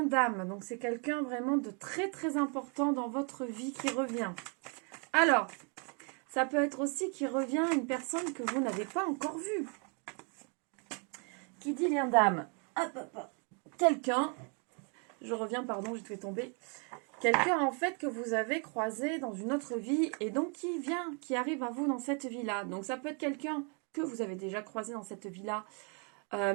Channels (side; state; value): left; quieter; 37.4 dB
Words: d'âme, donc c'est quelqu'un vraiment de très très important dans votre vie qui revient. Alors, ça peut être aussi qui revient une personne que vous n'avez pas encore vue. Qui dit lien d'âme? Quelqu'un, je reviens, pardon, j'ai fait tomber. Quelqu'un en fait que vous avez croisé dans une autre vie et donc qui arrive à vous dans cette vie-là. Donc ça peut être quelqu'un que vous avez déjà croisé dans cette vie-là,